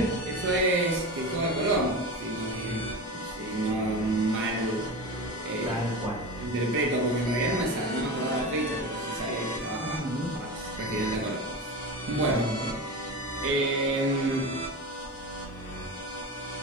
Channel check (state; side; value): normal; both; correlation 0.26